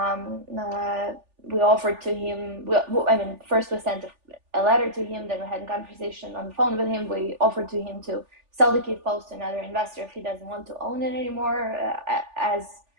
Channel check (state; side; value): late; left; 3.4 ms